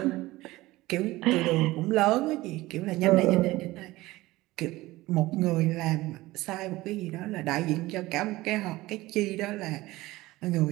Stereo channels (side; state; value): left; quieter; 18.7 dB